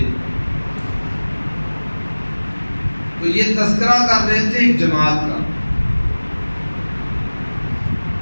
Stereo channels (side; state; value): both; inverted; correlation -1.00